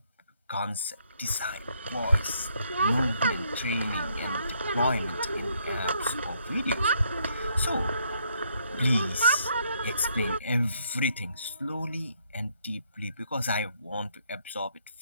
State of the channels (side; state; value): both; inverted; correlation -0.71